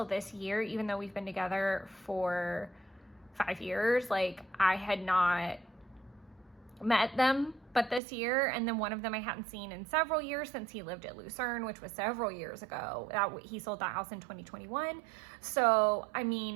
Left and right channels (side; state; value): left; drops out; at 8.0 s